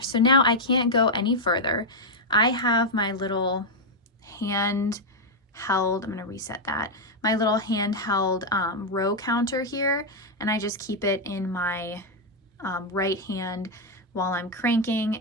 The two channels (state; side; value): normal; both; correlation 0.00